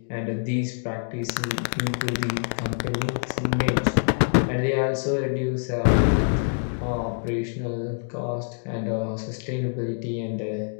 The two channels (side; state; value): right; silent; 59 dB below the other